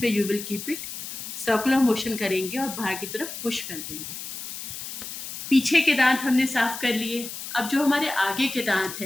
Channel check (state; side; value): noise; left; hiss, 9 dB below the sound